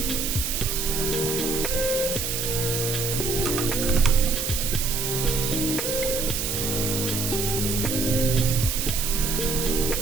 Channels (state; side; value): noise; right; hiss, 1 dB below the sound